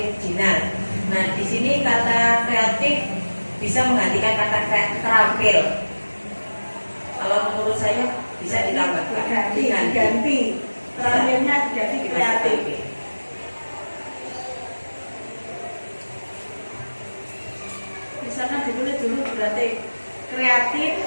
Nah, di sini kata kreatif bisa menggantikan kata terampil. Kalau menurut saya bisa ditambahkan. Diganti. Terampilnya jadi kreatif. Misalnya ditulis dulu berarti kreatif,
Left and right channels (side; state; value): both; inverted; correlation -1.00